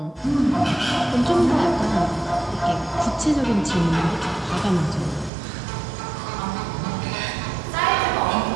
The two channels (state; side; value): drops out; left; at 5.3 s